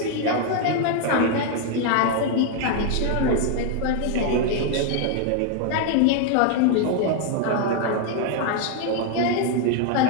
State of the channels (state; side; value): different; both; correlation 0.01